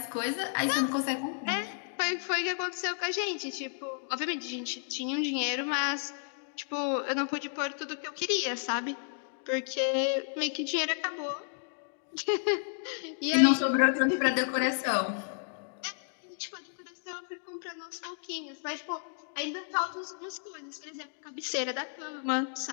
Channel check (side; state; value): right; silent; digital silence